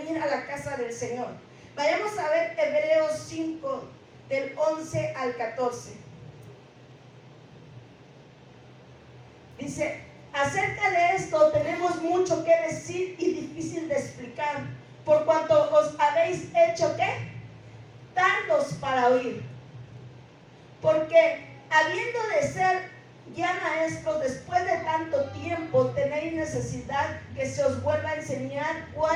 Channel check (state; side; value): identical; both; correlation 1.00